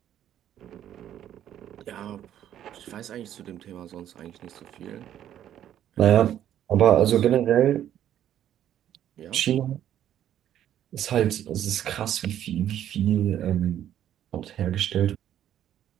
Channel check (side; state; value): left; quieter; 11.0 dB